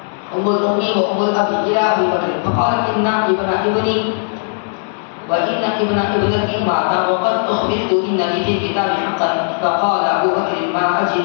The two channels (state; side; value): silent; right; 68 dB below the other